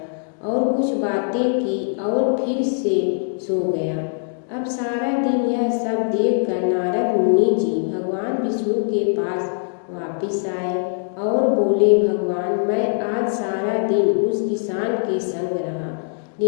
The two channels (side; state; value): right; silent; digital silence